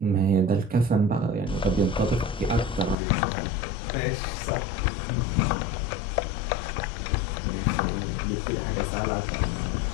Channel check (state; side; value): drops out; right; at 3.0 s